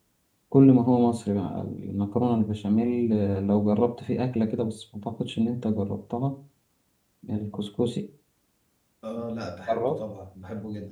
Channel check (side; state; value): both; identical; correlation 1.00